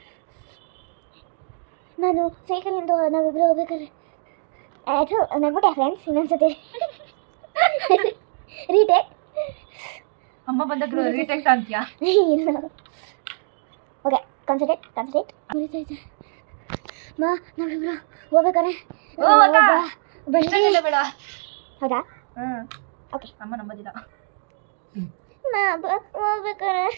ನಾನು ಸೈಕಲಿಂದ ನಾವಿಬ್ಬರು ಹೋಗ್ಬೇಕಾದ್ರೆ ಅದು ನಗ್ಬಿಟ್ಟೆ ಫ್ರೆಂಡ್ಸ್. ಇನ್ನೊಂದ್ಸತಿ ರೀಟೇಕ್. ಅಮ್ಮ ಬಂದಾಗ ರೀಟೇಕ್ ಅಂತೀಯಾ? ಇಲ್ಲ, ಓಕೆ, ಕಾನ್ಸಂಟ್ರೇಟ್. ಉರಿತೈತೆ. ನಾವಿಬ್ರು ಹೋಗ್ಬೇಕಾರೆ ಬೇಡ. ಹೌದಾ? ಓಕೆ. ಅಮ್ಮ ನಂಬೋದಿಲ್ಲ. ಹೋಗ್ಬೇಕಾರೆ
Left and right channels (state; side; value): silent; left; digital silence